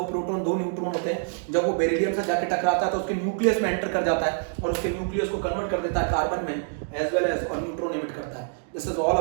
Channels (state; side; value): silent; left; digital silence